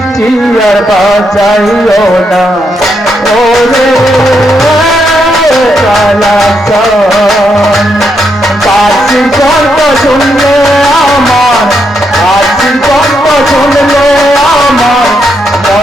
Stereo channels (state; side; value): normal; both; correlation 0.79